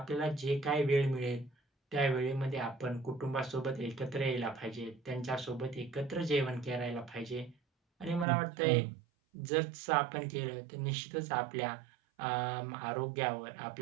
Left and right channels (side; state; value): left; drops out; at 8.2 s